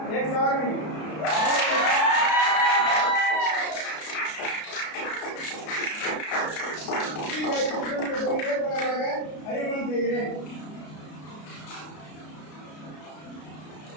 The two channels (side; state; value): right; late; 33 ms